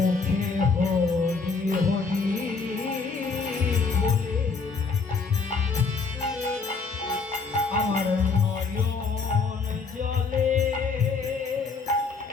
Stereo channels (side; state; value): right; quieter; 4.5 dB